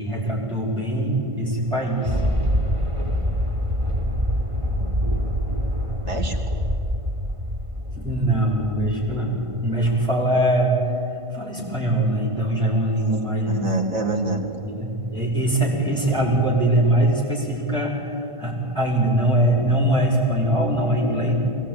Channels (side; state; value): left; late; 1.5 ms